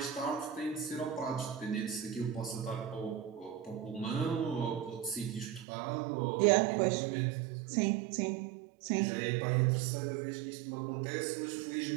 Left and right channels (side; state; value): left; drops out; at 5.7 s